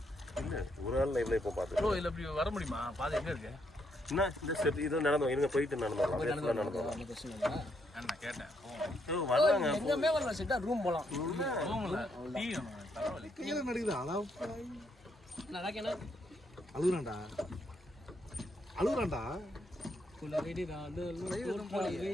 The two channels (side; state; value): both; normal; correlation 0.75